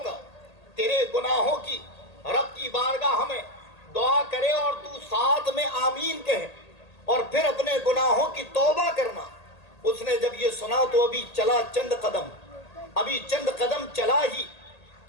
کا، تیرے گناہوں کی رب کی بارگاہ میں دعا کرے اور تو ساتھ میں آمین کہے اور پھر اپنے گناہوں کی توبہ کرنا۔ اس نے جب یہ سنا تو ابھی چند قدم چلا ہی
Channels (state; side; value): late; right; 1.8 ms